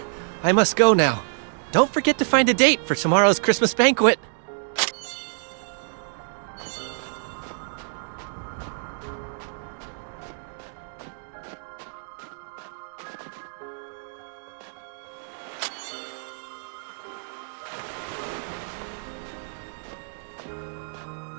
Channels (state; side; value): silent; left; digital silence